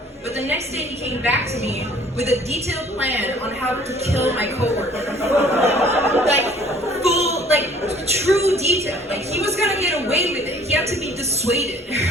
but the next day he came back to me with a detailed plan on how to kill my coworker. Like, full, like, true detail. Like, he was gonna get away with it. He had to be dissuaded.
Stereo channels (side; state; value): both; normal; correlation 0.54